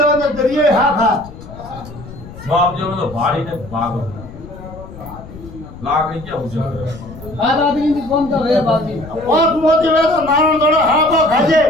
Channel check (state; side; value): noise; left; rumble, 15 dB below the sound